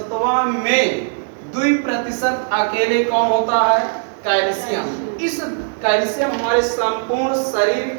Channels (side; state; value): left; silent; digital silence